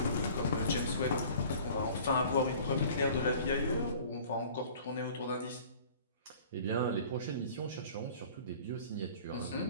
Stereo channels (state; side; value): inverted; both; correlation -0.47